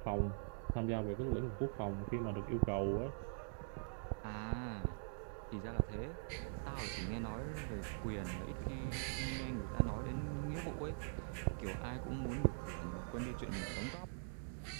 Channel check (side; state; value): left; silent; digital silence